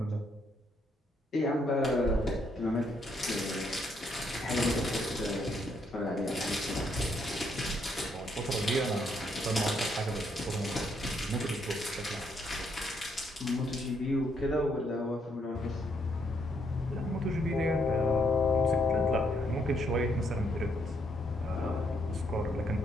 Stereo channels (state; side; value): normal; both; correlation 0.74